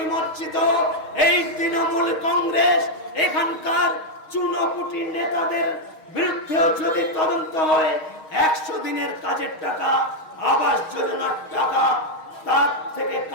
এই তৃণমূল কংগ্রেস এখানকার চুনোপুটি নেতাদের বিরুদ্ধেও যদি তদন্ত হয়, 100 দিনের কাজের টাকা, আবাস যোজনার টাকা তার থেকে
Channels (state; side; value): late; right; 6.4 ms